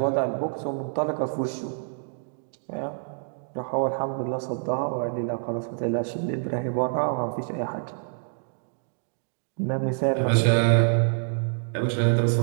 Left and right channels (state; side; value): silent; left; digital silence